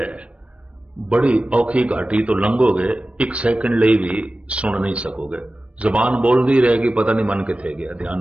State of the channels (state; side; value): late; left; 0.062 ms